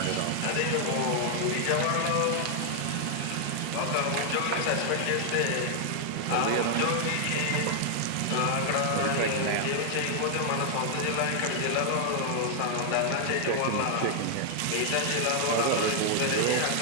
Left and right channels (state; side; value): different; both; correlation 0.00